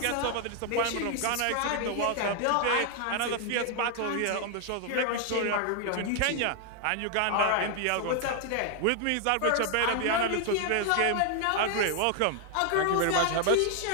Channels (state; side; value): different; both; correlation 0.00